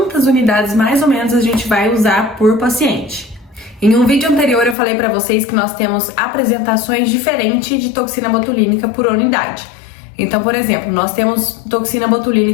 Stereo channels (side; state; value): right; drops out; at 4.8 s